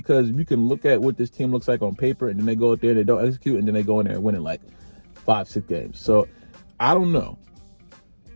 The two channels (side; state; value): both; inverted; correlation -1.00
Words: you can look at what this team looks like on paper and then they go out there and they don't execute and then they go in there and win in like 5-6 games. So I don't know.